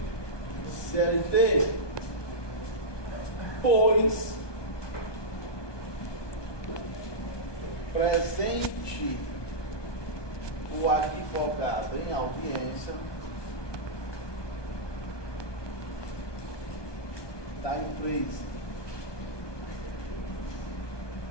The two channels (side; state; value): right; late; 1.2 ms